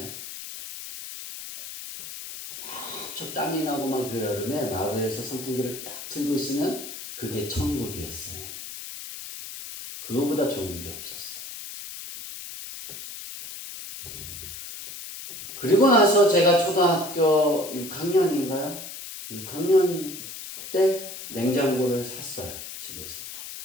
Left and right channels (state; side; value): noise; left; hiss, 10 dB below the sound